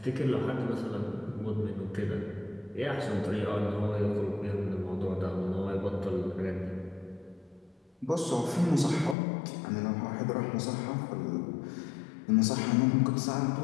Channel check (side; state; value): right; drops out; at 9.2 s